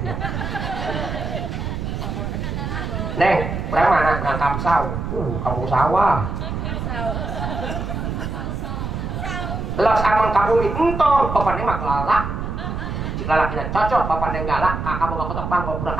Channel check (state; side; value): noise; right; rumble, 4 dB below the sound